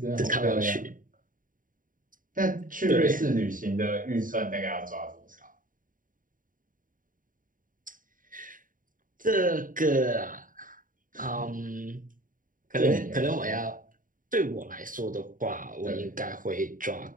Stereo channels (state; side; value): late; left; 0.39 ms